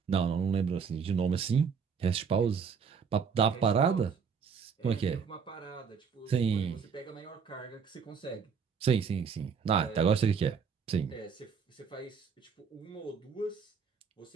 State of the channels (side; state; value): left; quieter; 6.2 dB